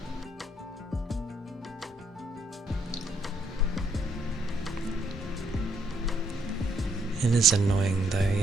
It is annoying though,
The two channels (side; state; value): both; normal; correlation 0.72